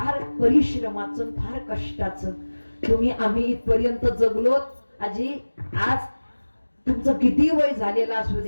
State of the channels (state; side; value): inverted; both; correlation -1.00